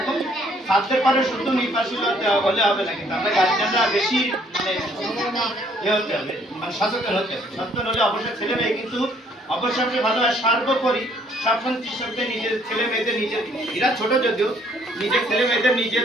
ছাত্রের পরে শুধু নির্বাচন হলে হবে না, কিন্তু আমরা গার্জিয়ানরা বেশি হতে হবে, মানে সচেতন হতে হবে। সচেতন হলে অবশ্যই ছেলে মেয়ে কিন্তু অবশ্যই ভালো হয়। সর্বোপরি সবসময় কৃষকদের নিজের ছেলে মেয়েদের, নিজের এরা ছোট যদিও, নিজের ছেলে মেয়েদের নিজের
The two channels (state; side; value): normal; both; correlation 0.64